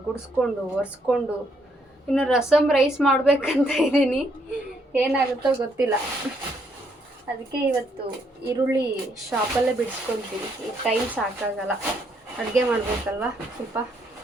ಗುಡಿಸ್ಕೊಂಡು ಒರೆಸ್ಕೊಂಡು ಇನ್ನು ರಸಮ್ ರೈಸ್ ಮಾಡಬೇಕಂತ ಇದ್ದೀನಿ. ಏನಾಗುತ್ತೋ ಗೊತ್ತಿಲ್ಲ. ಅದಕ್ಕೆ ಇವತ್ತು ಈರುಳ್ಳಿ ಶಾಪಲ್ಲೇ ಬಿಡಿಸ್ಕೊತೀನಿ. ಈಗ ಟೈಮ್ ಸಾಕಾಗಲ್ಲ, ಅಡುಗೆ ಮಾಡಬೇಕಲ್ವ. ಸ್ವಲ್ಪ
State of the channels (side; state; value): both; normal; correlation 0.72